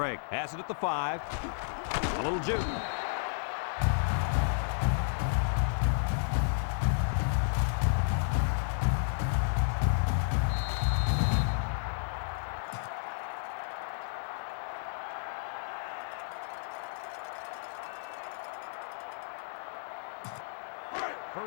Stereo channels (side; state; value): right; silent; 56 dB below the other